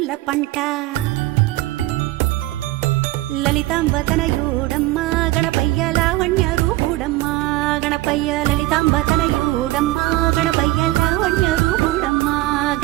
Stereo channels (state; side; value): quieter; left; 18.0 dB